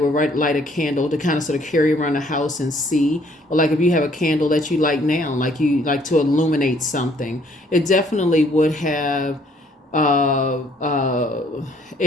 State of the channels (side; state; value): both; normal; correlation 0.63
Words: light a candle to kind of sort of carry around the house and see, or like if you have a candle that you light now, like you like to illuminate something, it definitely would have uh, uh,